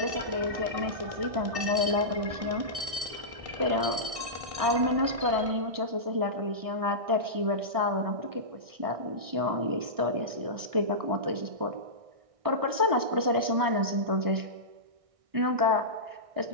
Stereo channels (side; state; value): left; late; 1.6 ms